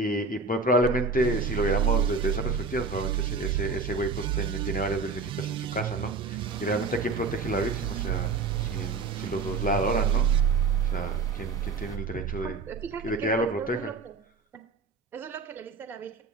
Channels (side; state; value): left; quieter; 4.2 dB